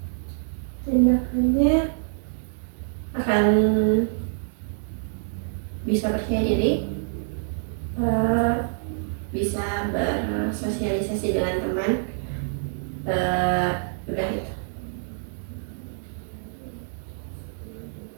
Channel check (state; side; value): silent; left; digital silence